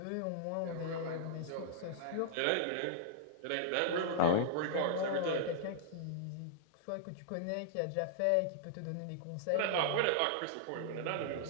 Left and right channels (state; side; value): different; both; correlation -0.02